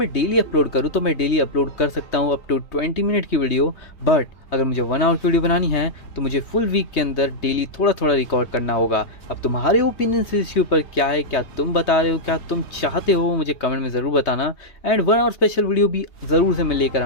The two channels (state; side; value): late; right; 3.2 ms